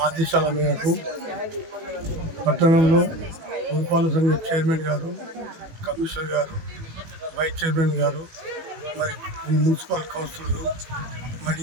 ఆదేశాల మేరకు పట్టణంలో పురపాలక సంఘ చైర్మన్ గారు, కమిషనర్ గారు, వైస్ చైర్మన్ గారు, మరి మున్సిపల్ కౌన్సిలర్లు,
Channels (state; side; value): late; left; 18 ms